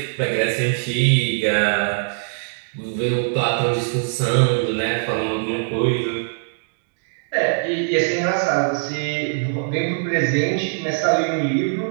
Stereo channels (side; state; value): left; silent; digital silence